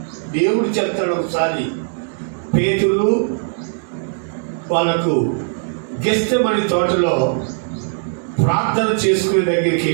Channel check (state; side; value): silent; left; digital silence